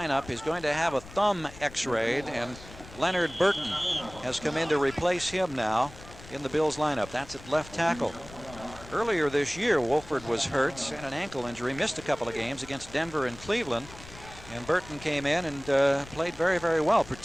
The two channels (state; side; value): noise; left; rumble, 17 dB below the sound